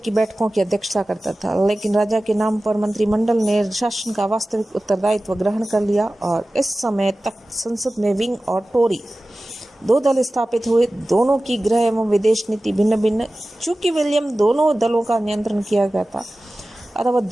बैठकों की अध्यक्षता करता था, लेकिन राजा के नाम पर मंत्रिमंडल ने शासन का वास्तविक उत्तरदायित्व ग्रहण कर लिया और इस समय तक संसद में विंग और टोरी 2 दल स्थापित हुए। दोनों की गृह एवं विदेश नीति भिन्न भिन्न। चूंकि विलियम दोनों दलों का नियंत्रण किया गया था अतः वह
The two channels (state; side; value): normal; both; correlation 0.96